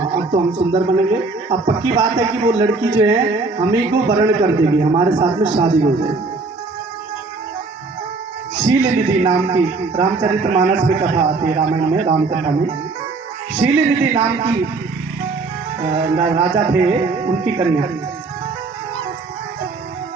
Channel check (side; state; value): left; quieter; 3.8 dB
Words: अब तो हम सुंदर बनेंगे। अब पक्की बात है कि वो लड़की जो है हमें को वर्ण कर देगी, हमारे साथ में शादी हो जाएगी। शील निधि नाम की रामचरितमानस में कथा आती है, रामायण में राम कथा में। शील निधि नाम की राजा थे, उनकी कन्या।